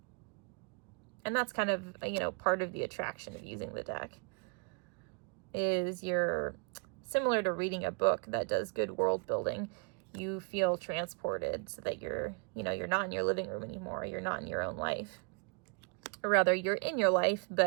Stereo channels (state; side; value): quieter; left; 37.0 dB